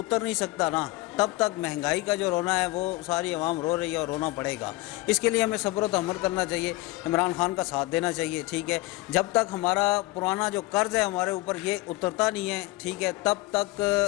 नहीं सकता ना, तब तक महंगाई का जो रोना है वो सारी आवाम रो रही है और रोना पड़ेगा। इसके लिए हमें सब्र व तहम्मुल करना चाहिए, इमरान खान का साथ देना चाहिए, ठीक है। जब तक हमारा पुराना जो कर्ज़ है हमारे ऊपर ये उतरता नहीं है, ठीक है, तब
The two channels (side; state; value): right; quieter; 19.8 dB